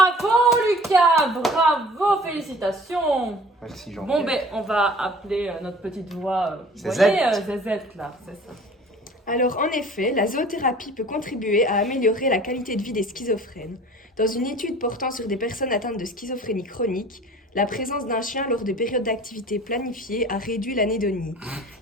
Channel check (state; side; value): normal; both; correlation 0.46